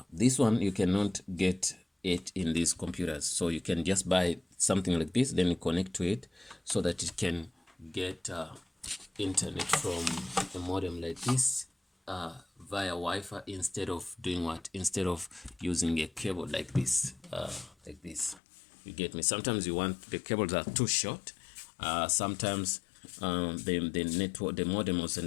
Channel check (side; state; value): right; drops out; at 18.4 s